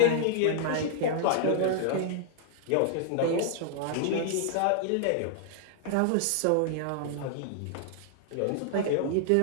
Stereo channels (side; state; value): both; different; correlation -0.01